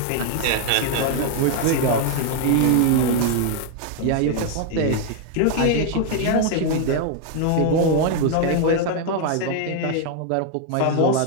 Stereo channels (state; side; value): different; both; correlation 0.00